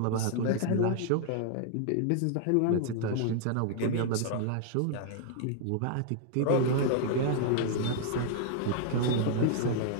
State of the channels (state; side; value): different; both; correlation 0.00